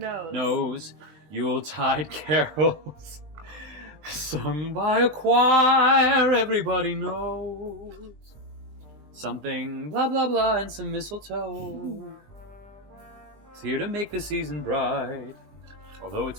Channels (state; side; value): late; left; 20 ms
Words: Nose. Yuletide carols sung by a choir everybody knows. Something blah blah blah and some mistletoe. It's here to make the season bright. Although it's